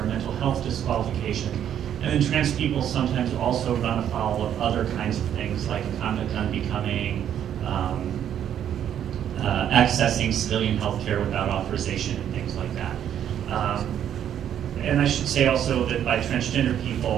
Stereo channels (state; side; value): quieter; left; 9.9 dB